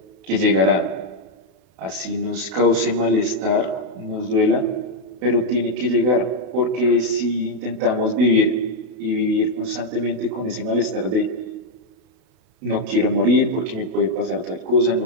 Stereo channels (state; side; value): late; left; 32 ms